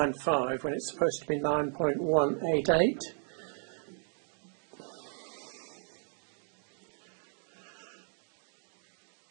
when it's supposed to be 9.188.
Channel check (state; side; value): silent; left; 55 dB below the other